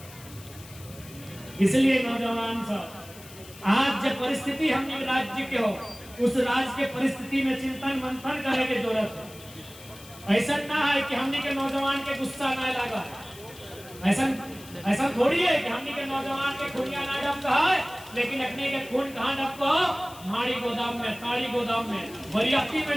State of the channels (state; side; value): noise; left; hiss, 19 dB below the sound